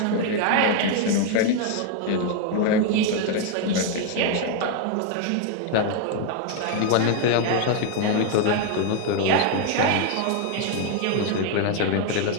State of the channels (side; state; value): both; different; correlation 0.01